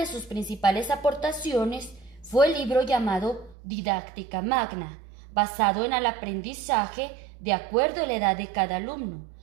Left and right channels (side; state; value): left; drops out; at 3.6 s